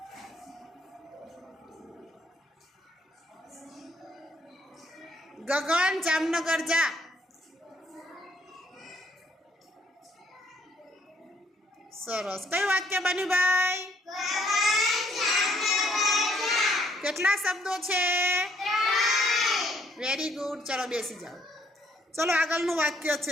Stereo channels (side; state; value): both; normal; correlation 0.67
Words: गगन जामनगर जा। सरस। कई वाक्य बन्यु भाई? केटला शब्दों छे? Very good. चलो बेसी जाओ। चलो आगळनुं वाक्य